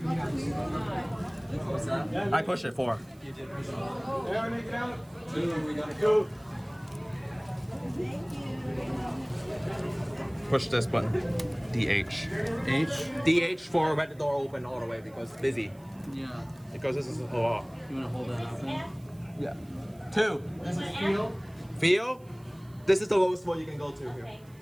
I push it 4. Push this button. DH. H. DH for let the door open all the way because it's busy. Yeah. Because this is a lot. You want to hold that up then? Yeah. 2. This is feel. Feel? This is the lowest one you can go to here. Okay,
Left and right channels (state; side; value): noise; right; hiss, 28 dB below the sound